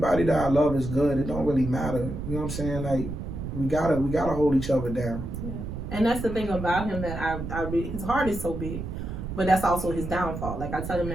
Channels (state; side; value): noise; right; rumble, 6 dB below the sound